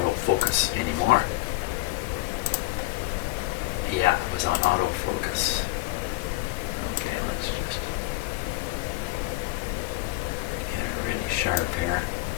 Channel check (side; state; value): right; quieter; 19.9 dB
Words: anymore. Yeah, it was on autofocus. Okay, let's just get it really sharp here.